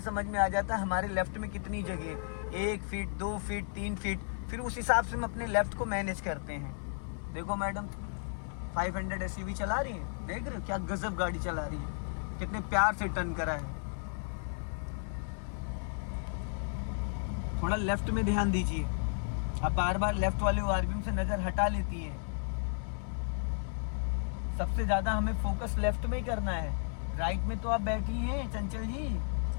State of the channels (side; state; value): right; silent; 55 dB below the other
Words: में आ जाता है हमारे लेफ्ट में कितनी जगह है, 1 फीट, 2 फीट, 3 फीट। फिर उस हिसाब से हम अपने लेफ्ट को मैनेज करते हैं। देखो मैडम 500 SUV चला रही है, देख रहे हो क्या गजब गाड़ी चला रही है, कितने प्यार से टर्न करा है। थोड़ा लेफ्ट में ध्यान दीजिए। अब बार बार लेफ्ट वाले ORVM से नजर हटा लेती है। सबसे ज्यादा हमें फोकस लेफ्ट में ही करना है। राइट में तो आप बैठी हैं चंचल जी,